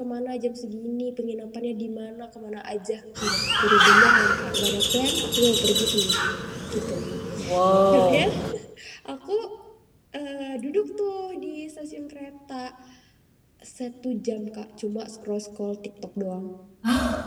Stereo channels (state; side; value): identical; both; correlation 1.00